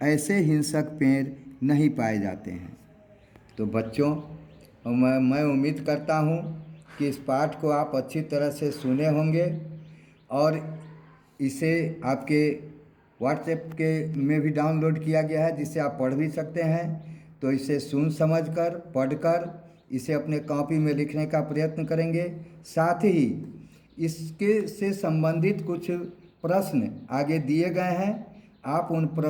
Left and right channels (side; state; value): both; identical; correlation 1.00